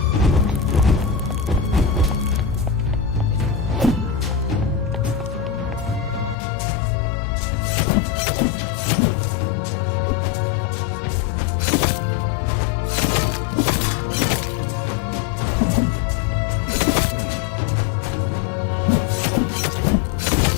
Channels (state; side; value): drops out; right; at 6.4 s